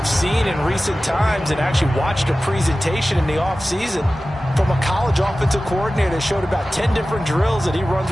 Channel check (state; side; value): normal; both; correlation 0.96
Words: seen in recent times and actually watched a presentation in the offseason from a college offensive coordinator that showed about 10 different drills that he runs